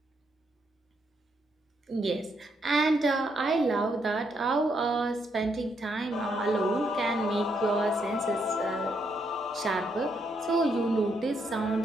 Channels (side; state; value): both; normal; correlation 0.76